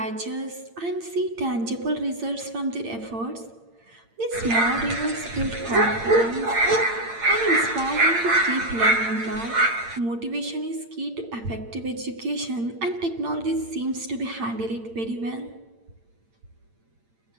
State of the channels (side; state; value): left; late; 8.8 ms